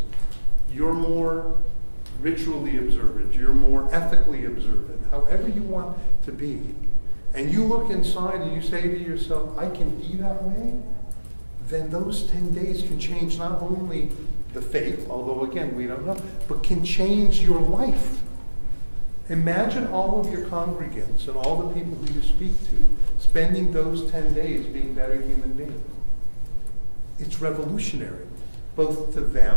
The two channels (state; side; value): inverted; both; correlation -1.00